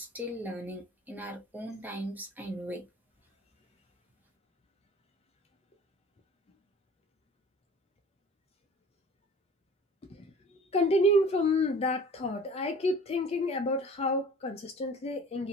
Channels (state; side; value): normal; both; correlation 0.45